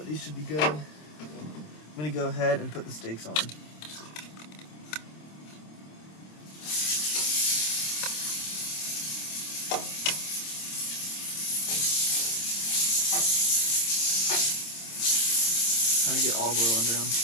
these should be good. I'm gonna go ahead and put the steaks on. Trying to get olive oil under them.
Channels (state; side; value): late; right; 26 ms